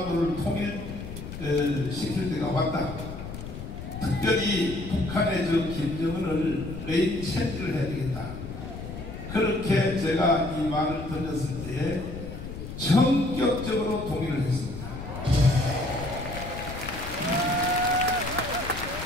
통일시킬 때가 왔다. 특별히 북한의 저 김정은을 레인 체인지를 해야 되겠다. 그렇게 제가 이 말을 던졌을 때에 전격적으로 동의를 했습니다.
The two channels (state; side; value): noise; left; rumble, 9 dB below the sound